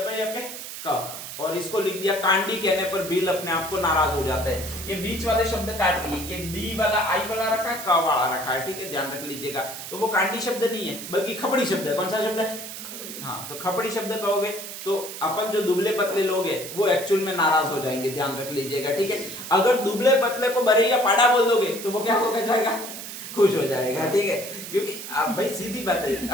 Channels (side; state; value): right; noise; hiss, 9 dB below the sound